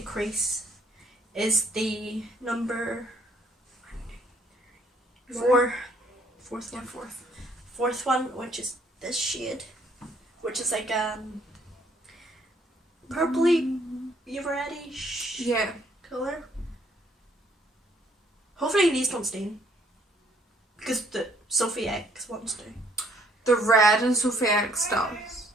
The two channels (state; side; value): normal; both; correlation 0.64